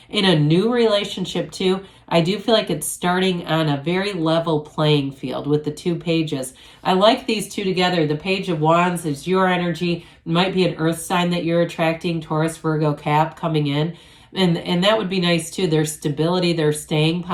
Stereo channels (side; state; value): both; identical; correlation 1.00